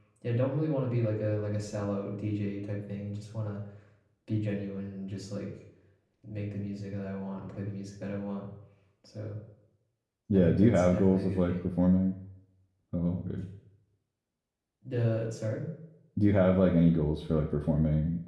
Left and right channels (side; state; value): both; identical; correlation 1.00